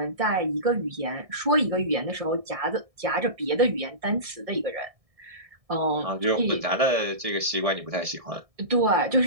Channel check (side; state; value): left; late; 1.7 ms